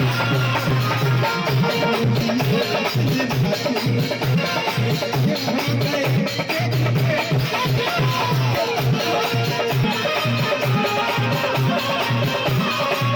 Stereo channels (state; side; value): identical; both; correlation 1.00